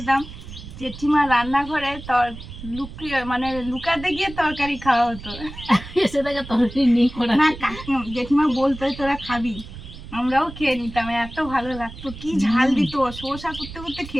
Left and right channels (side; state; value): right; noise; rumble, 13 dB below the sound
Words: জেঠিমা রান্নাঘরে মানে লুকাতে গিয়ে তরকারি খাওয়া হতো। এসে থেকে তরকারি নেই করা না, জেঠিমা বলতো তোরা খাবি, আমরাও খেয়ে নিতাম, এত ভালো লাগতো। কি ঝাল দিত, শসা করতে করতে